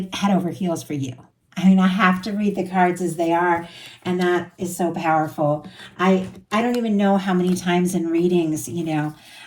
head over heels for you. I mean, I have to read the cards as they are, and that is so powerful. I don't even know how many times in readings,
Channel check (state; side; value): identical; both; correlation 1.00